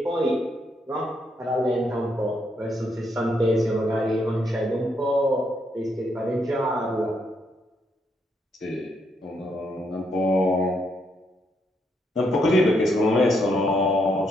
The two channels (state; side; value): normal; both; correlation 0.76